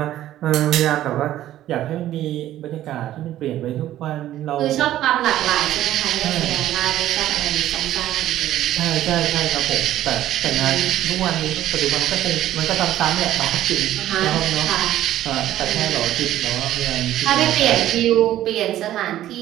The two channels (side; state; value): left; quieter; 13.2 dB